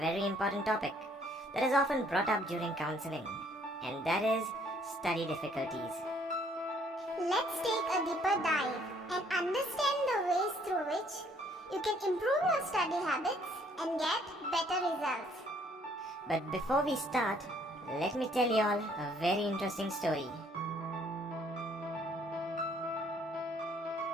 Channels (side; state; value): both; normal; correlation 0.63